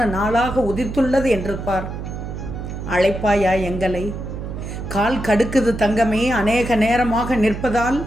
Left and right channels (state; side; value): noise; right; hum, 7 dB below the sound